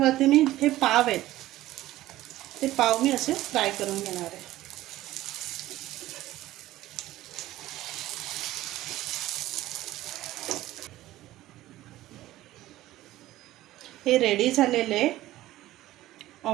मी हे पाव आहेत, ते पाव मी असे फ्राय करून घेणार आहे। हे रेडी झालेले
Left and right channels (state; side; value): quieter; left; 15.5 dB